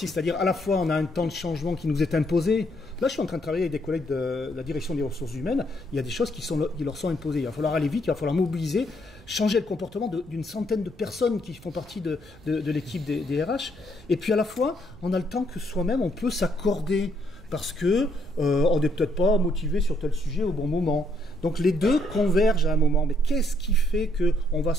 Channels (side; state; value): right; noise; rumble, 21 dB below the sound